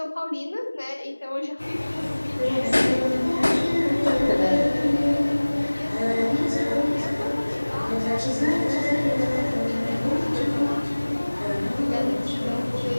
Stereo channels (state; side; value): inverted; both; correlation -1.00